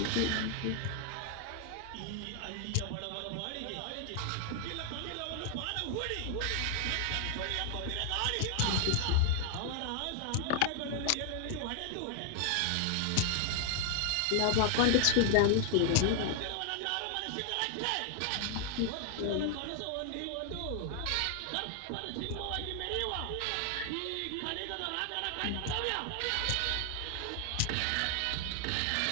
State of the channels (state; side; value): different; both; correlation 0.00